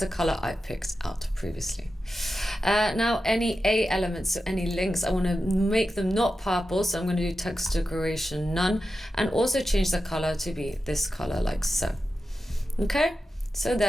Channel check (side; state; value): both; normal; correlation 0.91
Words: a color I picked out previously. Now any A elements, so any links, I want to make them not purple, so I'm going to do text decoration none, and also change the color to be this color like so. Okay, so